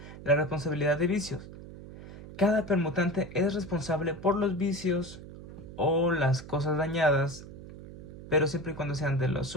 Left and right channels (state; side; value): noise; right; hum, 14 dB below the sound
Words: la responsabilidad de vicios. Cada permutante es responsable por los vicios o las cosas dañadas, pero siempre y cuando sean de los